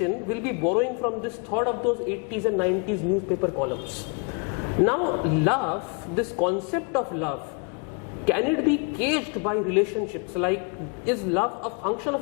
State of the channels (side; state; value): right; quieter; 35.2 dB